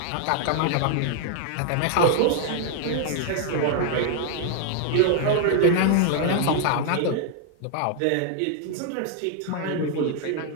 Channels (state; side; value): different; both; correlation 0.00